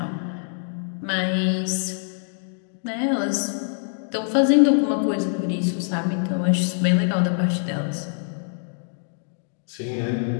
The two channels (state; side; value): silent; right; digital silence